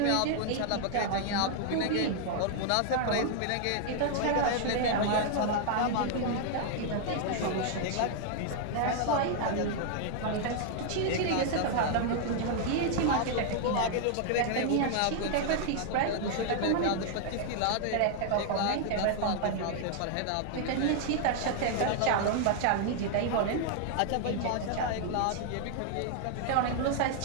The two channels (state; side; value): different; both; correlation 0.00